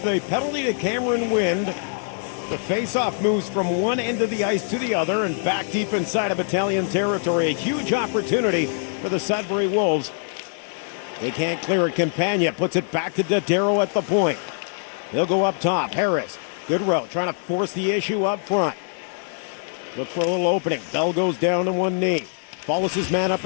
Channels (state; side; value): silent; right; digital silence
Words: the penalty to Cameron Wynn, the face-off moves from one end of the ice to the other and back deep inside of Battalion territory. A huge opportunity for the Sudbury Wolves. They can't clear it. Campagna puts it back to Dodero at the point. They'll go up top. Harris, good row, trying to force the issue up front. Look for a little opening. Bell goes down to one knee. Follows his man up